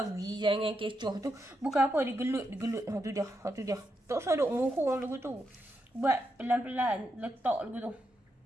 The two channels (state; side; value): normal; both; correlation 0.83